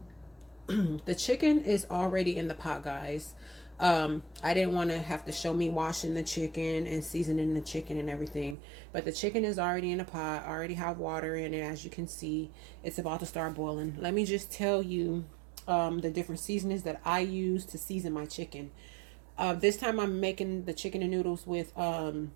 the chicken is already in the pot, guys. I didn't want to have to show me washing the chicken and seasoning the chicken and everything, but the chicken is already in the pot. I already have water in it. As you can see, it's about to start boiling. Let me just tell you the different seasonings that I use to season my chicken. This time I'm making the chicken and noodles with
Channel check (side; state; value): left; drops out; at 8.6 s